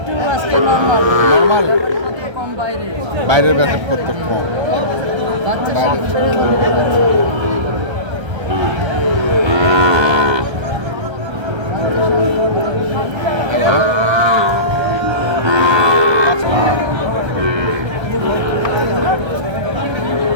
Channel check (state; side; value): late; left; 1.3 ms